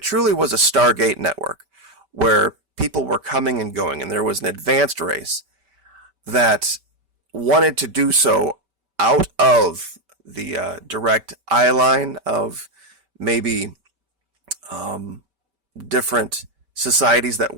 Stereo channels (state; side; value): late; left; 5.2 ms